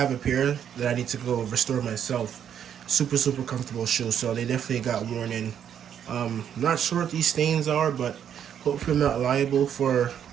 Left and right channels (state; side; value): quieter; left; 9.0 dB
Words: a pair that I need to go restore myself. Super comfortable shoe. So they definitely got worn in. Not sure what these stains are, but hopefully I'm not liable for